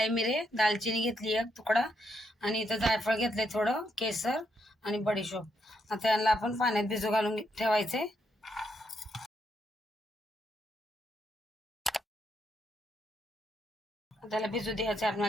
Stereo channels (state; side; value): normal; both; correlation 0.78